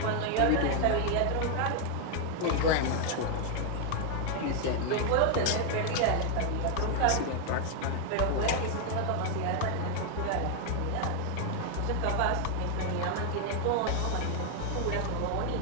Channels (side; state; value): both; different; correlation 0.00